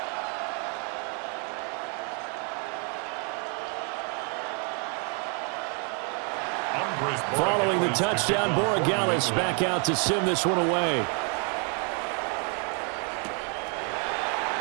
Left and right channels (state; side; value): quieter; left; 38.7 dB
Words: Following the touchdown, Borregales back out to send this one away.